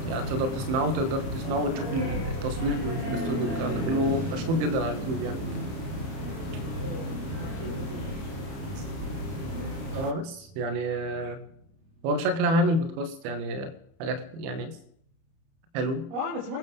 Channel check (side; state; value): left; late; 30 ms